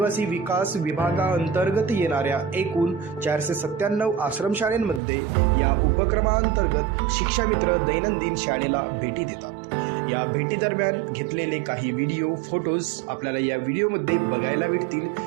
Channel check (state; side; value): drops out; left; at 5.0 s